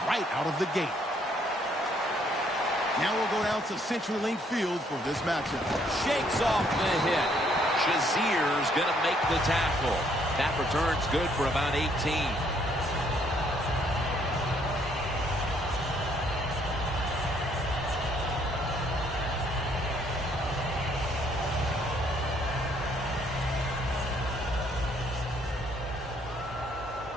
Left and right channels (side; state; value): both; normal; correlation 0.67